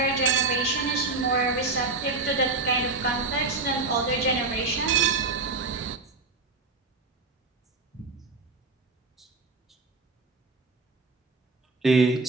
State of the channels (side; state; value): left; quieter; 3.6 dB